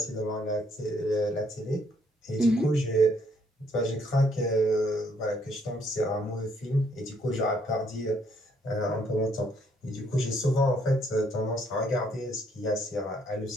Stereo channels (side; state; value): both; normal; correlation 0.69